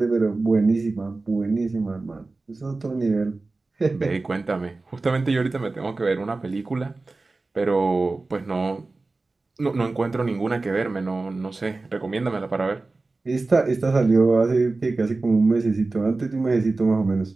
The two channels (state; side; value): quieter; left; 3.5 dB